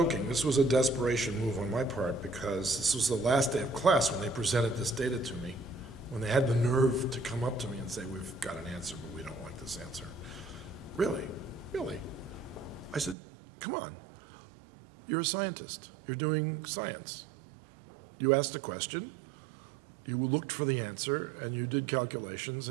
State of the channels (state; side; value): drops out; left; at 13.2 s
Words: This was a desperation move on my part, because this was the last day of class when they presented this data to me, when they had the nerve to come up to me and say, we've got an answer, but we don't like this answer. Really? Really? I said, come on. You're a scientist. You're doing science. You asked a question, you looked for the answer, and you did calculations,